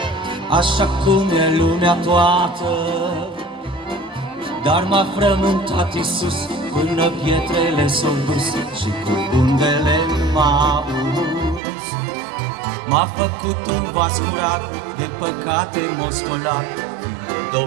așa cum e lumea toată, dar m-a frământat Iisus până pietrele s-au dus și cu undele m-a uns. M-a făcut un vas curat, de păcate m-a spălat,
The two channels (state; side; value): drops out; left; at 11.6 s